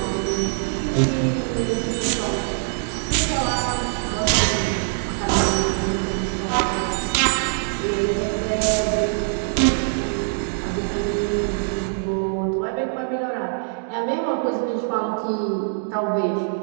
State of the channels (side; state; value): left; silent; digital silence